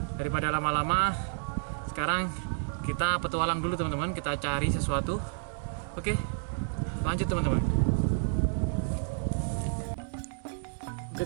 daripada lama-lama, sekarang kita petualang dulu teman-teman, kita cari sesuatu. Oke, lanjut teman-teman. Oke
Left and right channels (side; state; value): left; silent; digital silence